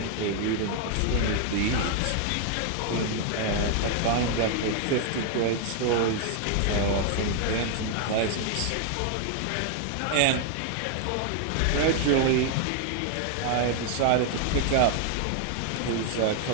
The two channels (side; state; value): both; different; correlation 0.00